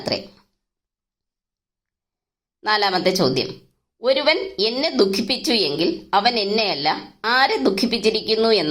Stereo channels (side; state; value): both; identical; correlation 1.00